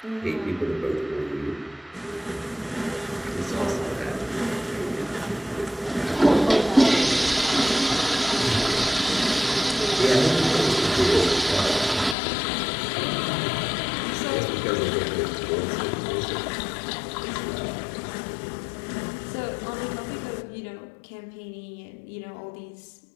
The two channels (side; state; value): right; drops out; at 12.2 s